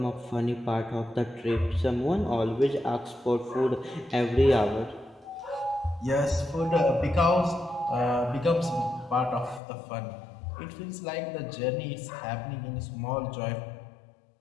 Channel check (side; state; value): right; drops out; at 9.6 s